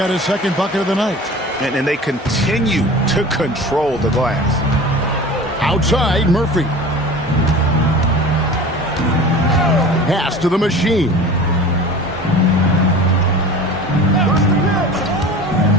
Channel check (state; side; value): normal; both; correlation 0.38